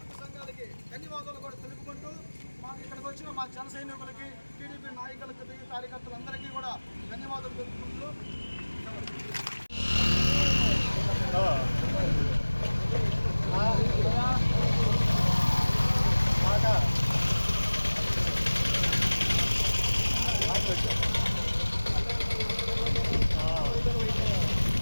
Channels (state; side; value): inverted; both; correlation -1.00